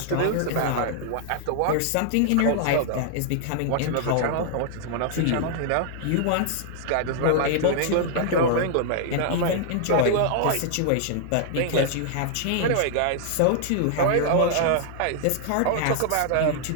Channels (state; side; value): different; both; correlation -0.01